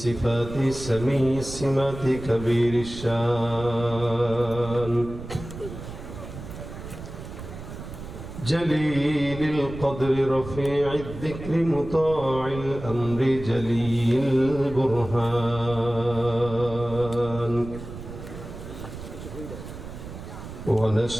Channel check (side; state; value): right; noise; rumble, 11 dB below the sound